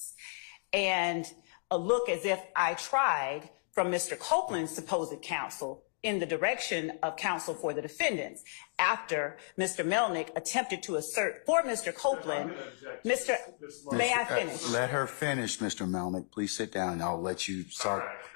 And a look as if I tried from Mr. Copeland's supposed counsel in the direction of counsel for the defendants after Mr. Melnick attempted to assert for Mr. Copeland. May I finish? Let her finish, Mr. Melnick. Please sit down. I'll let you start.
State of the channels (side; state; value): right; silent; 56 dB below the other